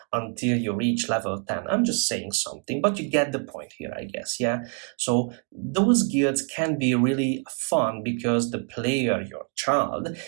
until you reach level 10. I'm just saying something, but you get the point here, I guess. Yeah. So those guilds can be really fun because the player, your child,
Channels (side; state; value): left; quieter; 38.0 dB